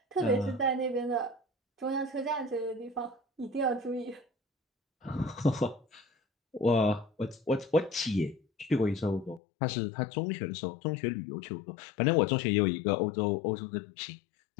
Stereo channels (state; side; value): drops out; right; at 9.4 s